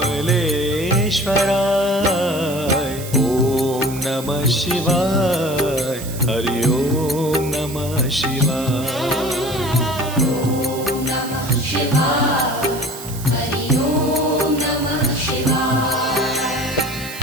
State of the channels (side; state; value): right; noise; hiss, 13 dB below the sound